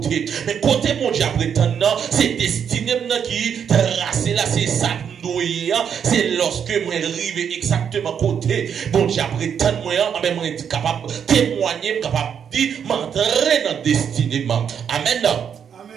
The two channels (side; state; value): left; quieter; 7.8 dB